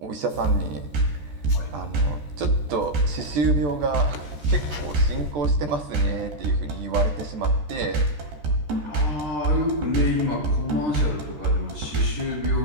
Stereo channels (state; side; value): late; left; 14 ms